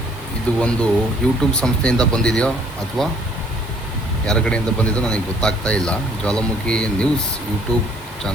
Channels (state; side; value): normal; both; correlation 0.61